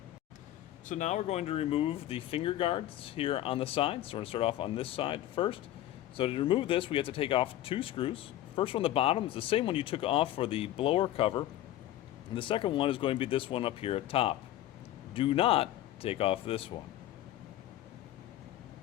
So now we're going to remove the finger guards here on the side. So we're going to start off on this side first. So to remove this, we have to take off two screws. First one on the bottom is the same one you took off for the blower cover. And the second one is going to be this one up here at top. Do not take off this one.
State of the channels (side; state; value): right; quieter; 13.7 dB